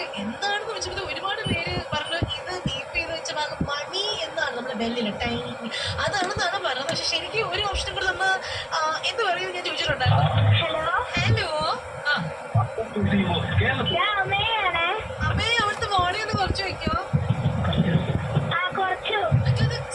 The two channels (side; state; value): both; identical; correlation 1.00